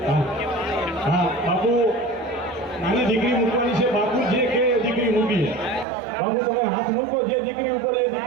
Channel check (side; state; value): left; drops out; at 5.9 s